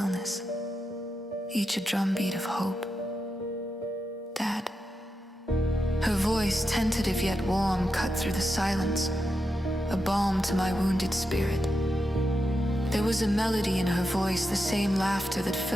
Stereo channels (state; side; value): normal; both; correlation 0.87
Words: each a drumbeat of hope. Dad. Her voice, tentative yet warm, cut through the silence, a balm to my wounded spirit. There was a melody in her voice, the same laughter that